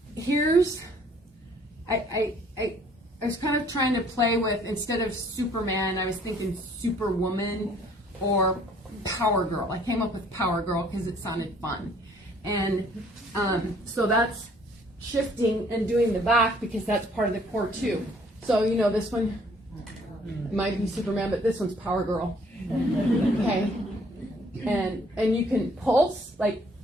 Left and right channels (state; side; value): normal; both; correlation 0.60